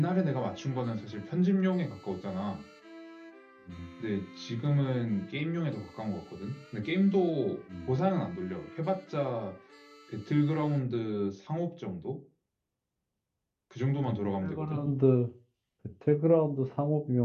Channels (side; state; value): both; identical; correlation 1.00